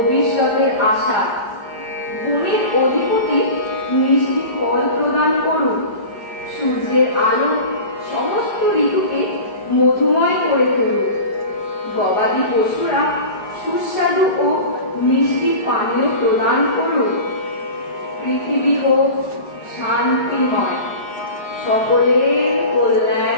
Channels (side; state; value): right; late; 5.2 ms